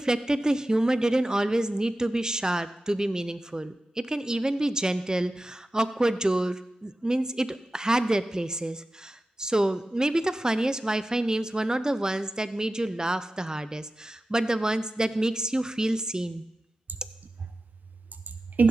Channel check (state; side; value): normal; both; correlation 0.94